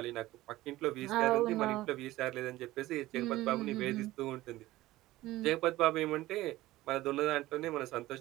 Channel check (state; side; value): quieter; left; 17.1 dB